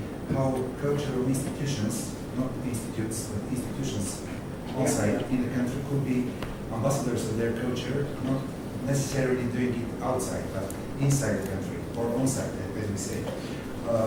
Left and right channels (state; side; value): identical; both; correlation 1.00